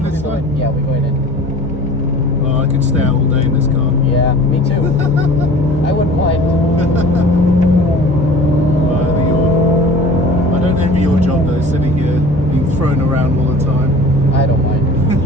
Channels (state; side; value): normal; both; correlation 0.44